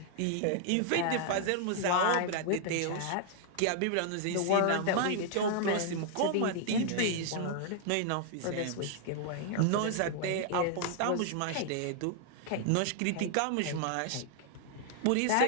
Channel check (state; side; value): different; both; correlation 0.00